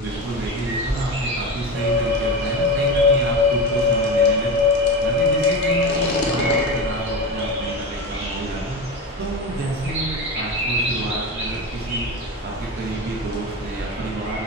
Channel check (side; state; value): both; normal; correlation 0.23